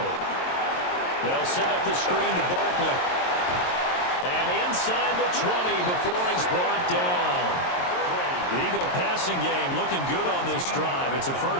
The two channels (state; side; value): late; right; 22 ms